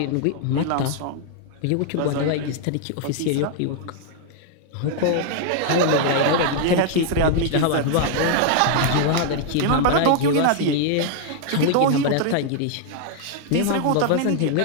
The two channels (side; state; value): both; different; correlation 0.00